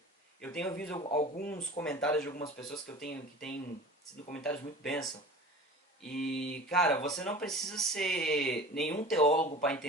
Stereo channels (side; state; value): both; normal; correlation 0.39